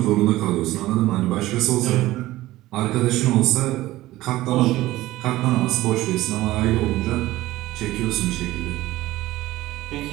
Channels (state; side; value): quieter; left; 16.8 dB